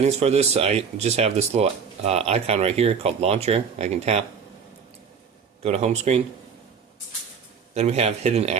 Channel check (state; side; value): quieter; left; 6.5 dB